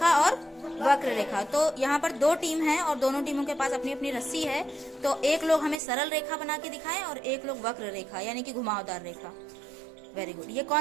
और वक्र रेखा। तो यहाँ पर दो टीम है और दोनों टीमों के पास अपनी अपनी रस्सी है। तो एक लोग हमें सरल रेखा बना के दिखाएं और एक लोग वक्र रेखा यानी कि घुमावदार रेखा। Very good. ये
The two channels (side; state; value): left; drops out; at 5.8 s